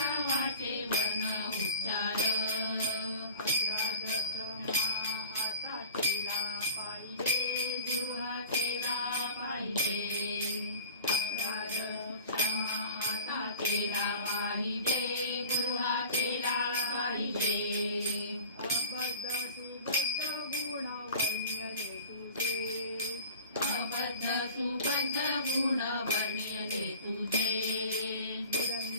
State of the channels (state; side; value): inverted; both; correlation -0.43